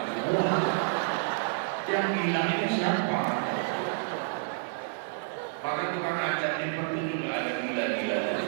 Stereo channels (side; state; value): left; silent; digital silence